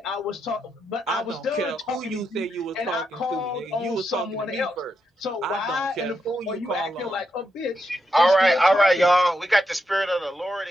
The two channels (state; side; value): normal; both; correlation 0.83